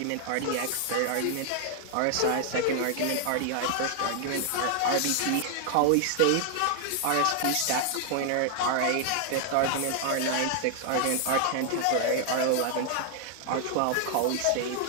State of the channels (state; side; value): different; both; correlation 0.00